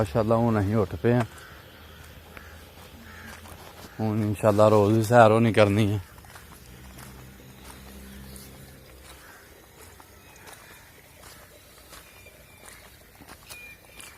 हुण असीं उठ पे हैं। हुण इंशाल्लाह रोज़ ही सैर होनी करनी है।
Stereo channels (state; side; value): identical; both; correlation 1.00